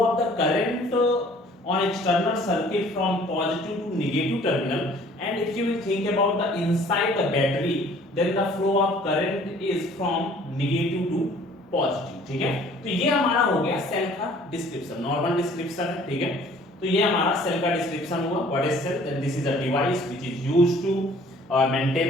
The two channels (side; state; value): both; normal; correlation 0.54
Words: of the current on external circuit from positive to negative terminal, and if you will think about the inside the battery, then the flow of current is from negative to positive, ठीक है। तो ये हमारा हो गया cell का description, normal description है, ठीक है। तो ये हमारा सेल का डिस्क्रिप्शन हुआ। What is cell, then this is a device which is used to